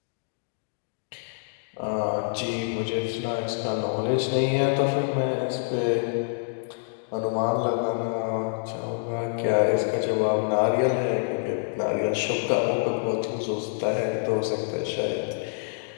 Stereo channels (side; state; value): right; silent; digital silence